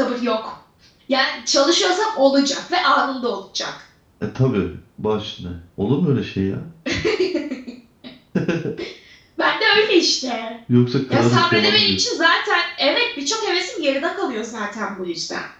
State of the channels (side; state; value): both; identical; correlation 1.00